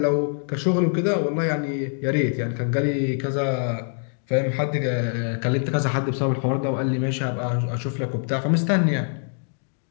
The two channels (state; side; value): silent; right; 59 dB below the other